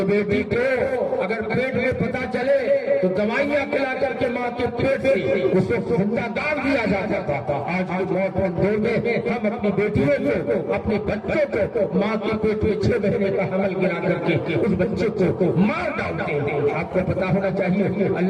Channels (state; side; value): identical; both; correlation 1.00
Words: بیٹی کو اگر پیٹ میں پتہ چلے تو دوائیاں کھلا کر کے ماں کے پیٹ سے اس کو زندہ گاڑ دیا جاتا تھا۔ آج کے ماڈرن دور میں ہم اپنی بیٹیوں کو، اپنے بچوں کو ماں کے پیٹ میں 6 مہینے کا حمل گرا کر کے اس بچے کو مار ڈالتے ہیں۔ آپ کو پتا ہونا چاہیے